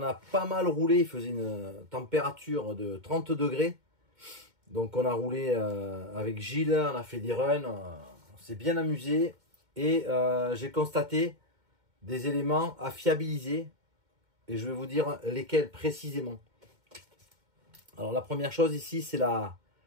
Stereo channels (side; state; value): left; late; 2.1 ms